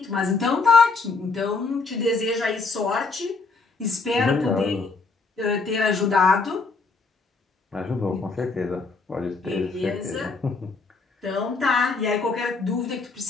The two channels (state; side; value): quieter; right; 4.2 dB